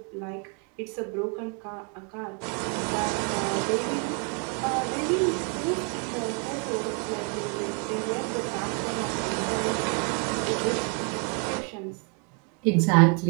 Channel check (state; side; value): quieter; left; 35.6 dB